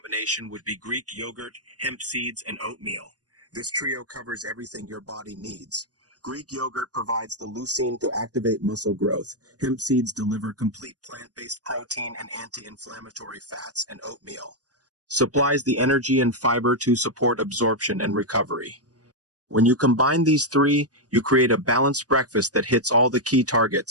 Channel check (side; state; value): left; late; 0.68 ms